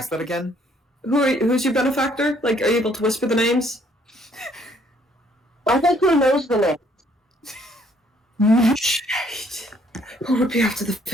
that again? who's your benefactor? Like, are you able to whisper the names? I think who knows the name? Shit. Who would be after the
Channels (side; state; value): both; normal; correlation 0.64